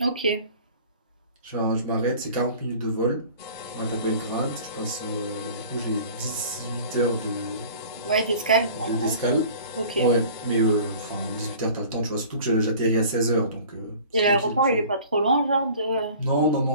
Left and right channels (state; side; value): inverted; both; correlation -0.45